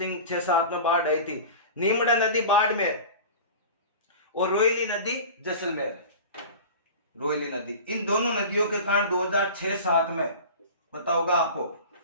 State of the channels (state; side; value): inverted; both; correlation -0.35